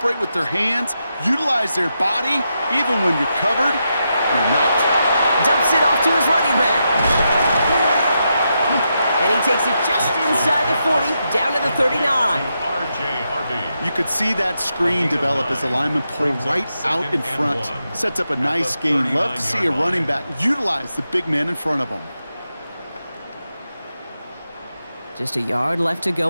with their hands, utilize their body, even when you're covered, you're not. Dumps it off to his running back. And he takes it just inside the 40, down to the 39. You could see that screen develop as the lineman pulled right out in front. Sets up a nice gain. Love to see a running back utilize the big man in front of him. Just a yard left to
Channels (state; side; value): inverted; both; correlation -0.85